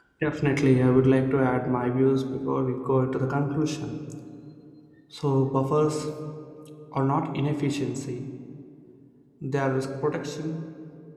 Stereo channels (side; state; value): both; identical; correlation 1.00